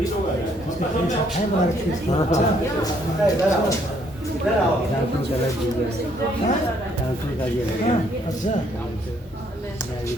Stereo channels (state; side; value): normal; both; correlation 0.68